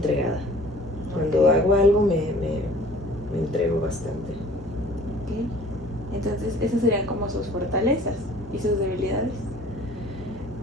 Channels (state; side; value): normal; both; correlation 0.50